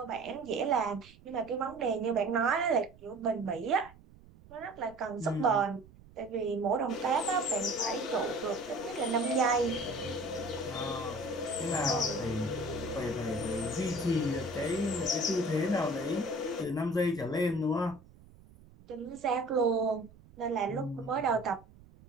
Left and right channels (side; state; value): right; noise; rumble, 23 dB below the sound